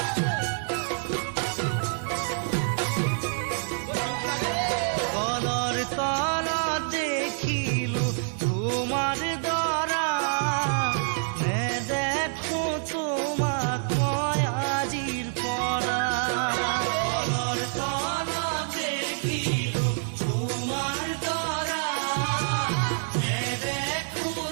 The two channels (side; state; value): left; silent; digital silence